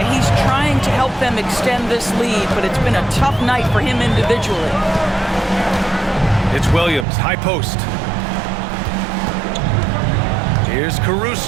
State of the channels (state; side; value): drops out; left; at 7.1 s